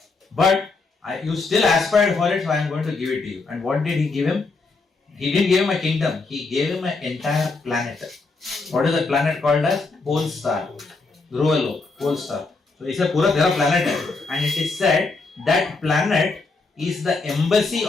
but you still aspired for it, so I am going to give it to you. And what did he give him? He didn't give him a kingdom. He gave him an entire planet. What is the planet called as? Pole star. Dhruvalo, pole star. So it's a pura tera planet hai. And it is said that planet is the embassy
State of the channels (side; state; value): right; quieter; 3.8 dB